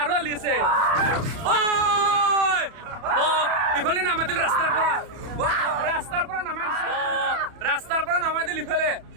আছে ইফালে নামাই দিল ৰাস্তাৰ পৰা নামাই দিল ইফালে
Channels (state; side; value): late; left; 31 ms